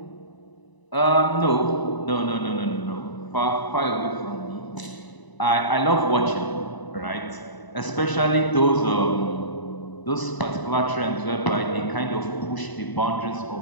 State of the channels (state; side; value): late; right; 1.0 ms